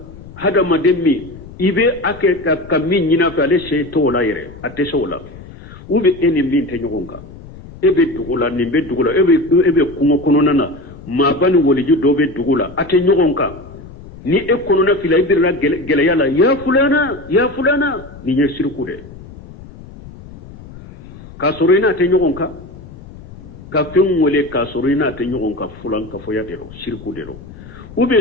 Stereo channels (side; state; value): left; noise; rumble, 17 dB below the sound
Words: hada maden mi ibe ake ka min nyina fa le sey to la yere ate sola ube eni min te nyogonka ebe dugula ni be dugula ebe kungo kono nana ma bani woliju do be dugula ate nyogonka ni e kono na fila ibirna geleya la ya fulana ni nye sirku de kasurina te nyogonka ka fen wole kasurina te nyogonka fulan ka foya dero shirku dero ube